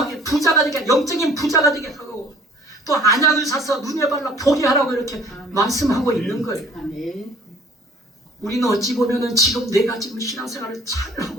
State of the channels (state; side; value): normal; both; correlation 0.54